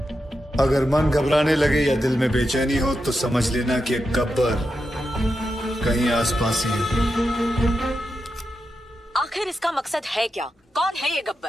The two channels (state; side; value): normal; both; correlation 0.88